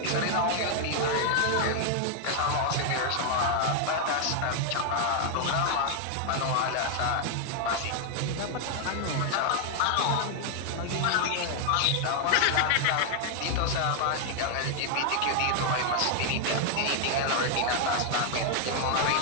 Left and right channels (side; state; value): both; different; correlation 0.00